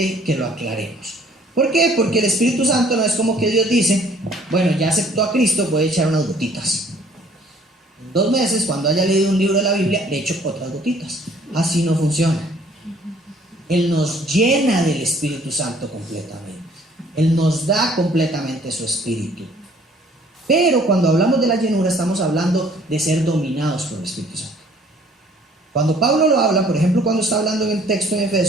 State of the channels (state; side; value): normal; both; correlation 0.58